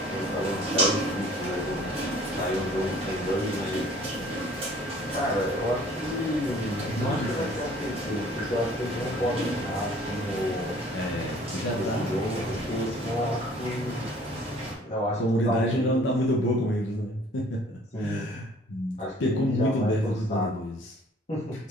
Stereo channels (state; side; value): normal; both; correlation 0.54